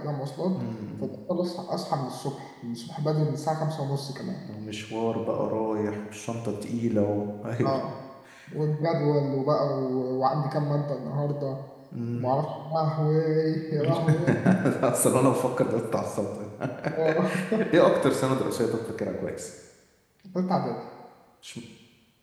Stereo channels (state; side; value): identical; both; correlation 1.00